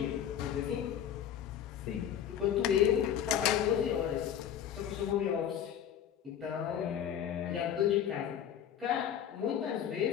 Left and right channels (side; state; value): right; quieter; 9.5 dB